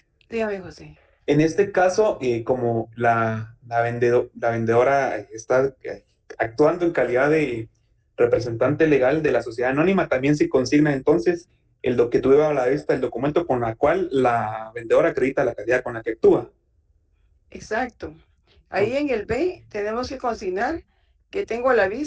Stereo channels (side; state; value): both; identical; correlation 1.00